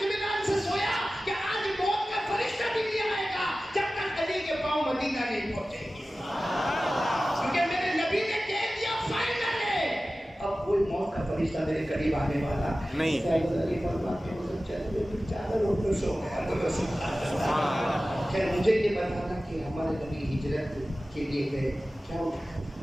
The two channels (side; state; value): both; normal; correlation 0.96